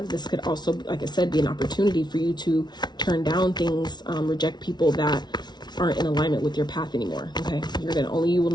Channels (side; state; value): right; late; 0.20 ms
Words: This could also, like I said, be an opportunity for you to turn down things, reject people that aren't in alignment with your path anymore. Okay, only you will